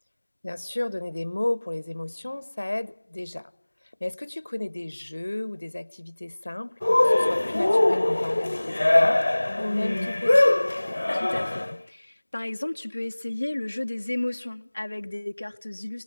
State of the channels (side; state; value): both; inverted; correlation -1.00